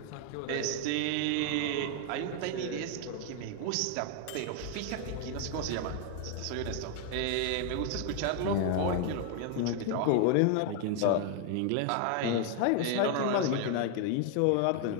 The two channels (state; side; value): different; both; correlation 0.00